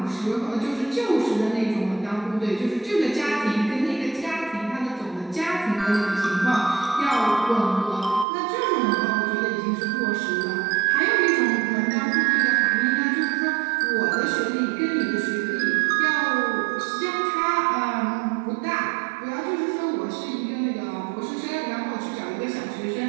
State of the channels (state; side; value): drops out; left; at 8.2 s